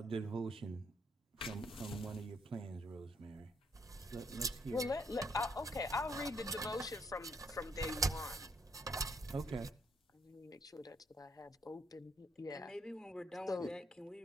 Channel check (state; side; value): normal; both; correlation 0.71